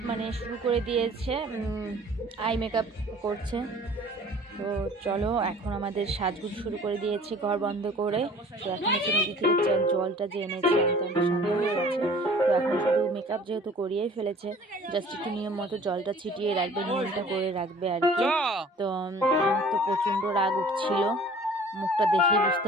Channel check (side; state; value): both; normal; correlation 0.49